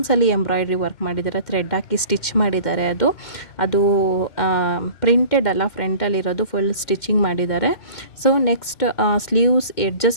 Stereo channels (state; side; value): late; right; 2.1 ms